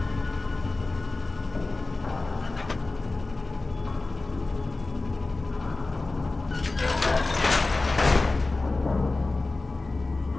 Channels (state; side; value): quieter; right; 3.3 dB